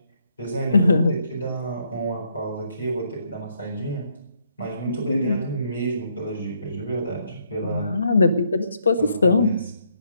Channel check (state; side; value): inverted; both; correlation -0.73